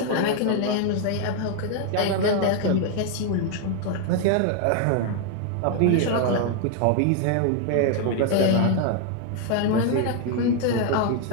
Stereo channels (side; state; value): both; different; correlation 0.00